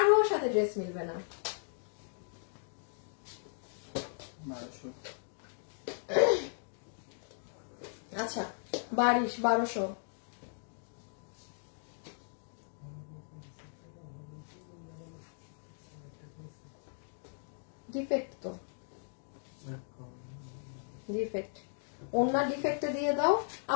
সাথে ড্রেস মিলবে না। আচ্ছা, 1200। ডিফেক্ট তো, ডিফেক্ট, ওনার ডিফেক্টে দিয়ে দাও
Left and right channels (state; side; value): silent; right; digital silence